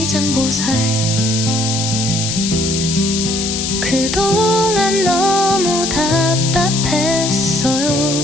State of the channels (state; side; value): noise; left; hiss, 2 dB below the sound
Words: 그동안 너무 답답했어요.